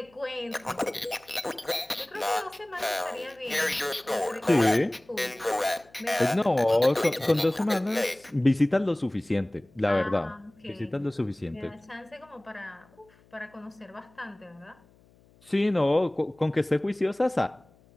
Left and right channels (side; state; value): left; noise; hum, 30 dB below the sound